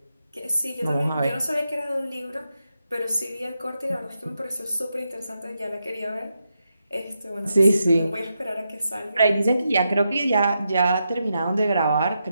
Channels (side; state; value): both; inverted; correlation -0.85